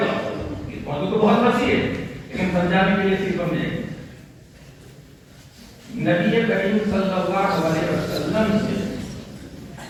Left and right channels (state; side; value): identical; both; correlation 1.00